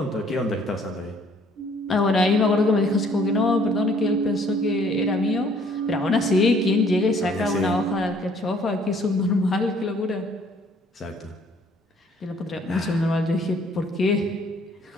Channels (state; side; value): normal; both; correlation 0.60